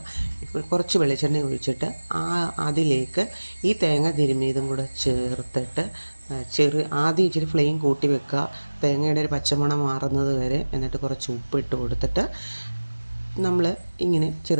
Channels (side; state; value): both; inverted; correlation -1.00